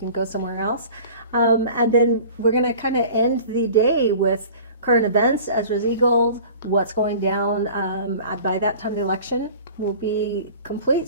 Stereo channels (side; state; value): both; inverted; correlation -0.43